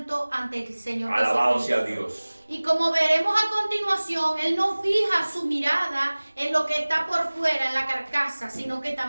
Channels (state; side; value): inverted; both; correlation -1.00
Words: ante el Señor. Alabado sea Dios. Y como veremos a continuación, Él no fija su mirada en lo que está por fuera, en la carcasa, sino que